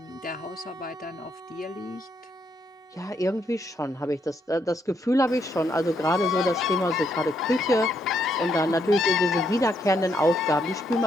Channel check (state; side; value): normal; both; correlation 0.75